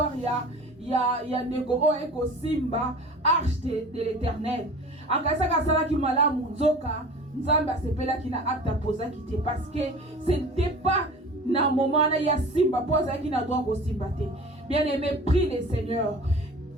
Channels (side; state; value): both; normal; correlation 0.40